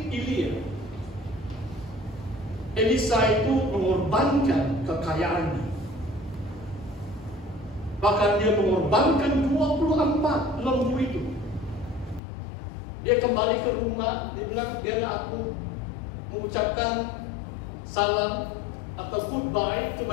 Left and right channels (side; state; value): right; drops out; at 12.2 s